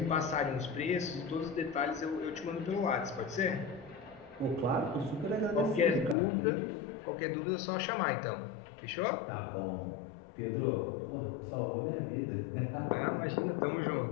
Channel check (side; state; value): right; drops out; at 6.2 s